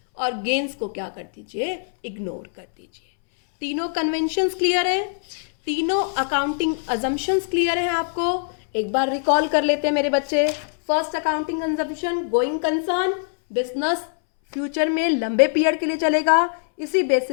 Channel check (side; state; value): right; silent; 63 dB below the other